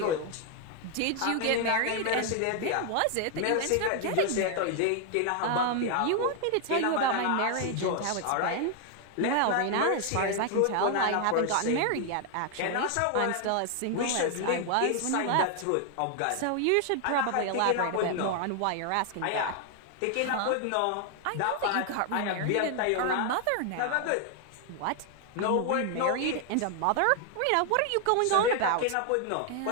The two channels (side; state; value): both; different; correlation 0.00